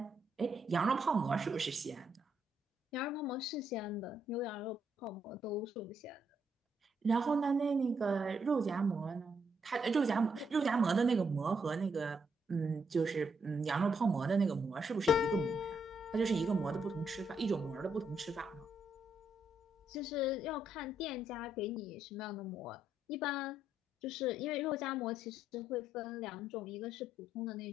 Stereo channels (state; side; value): normal; both; correlation 0.76